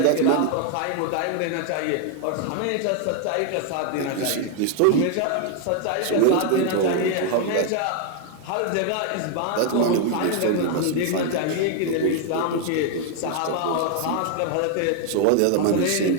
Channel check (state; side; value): different; both; correlation 0.00